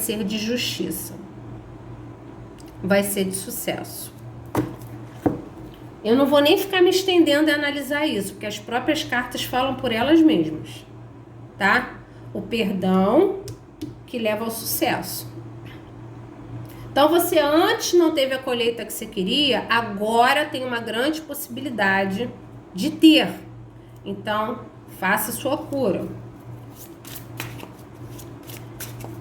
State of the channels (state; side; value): identical; both; correlation 1.00